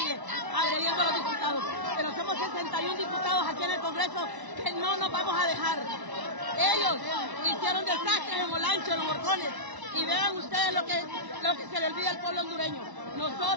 agrediendo a los diputados. Pero somos 61 diputados aquí en el Congreso que no nos vamos a dejar. Ellos hicieron desastres en Olancho, en los Morcones, y vean ustedes lo que se le olvida al pueblo hondureño.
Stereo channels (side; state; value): left; late; 1.0 ms